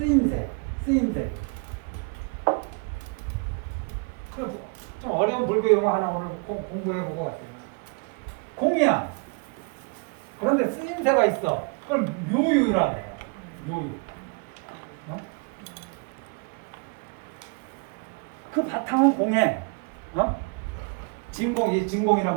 좀 어려운 불교 용어 하나 오늘 공부해보고 왔어요. 공이야. 그런데 쓰임새가 있어. 그걸 묘유라고 해요. 묘유. 그 바탕은 공해. 진공이란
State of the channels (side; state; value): left; quieter; 34.6 dB